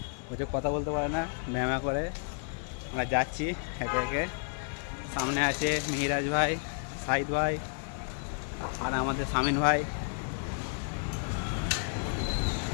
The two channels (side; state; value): right; silent; digital silence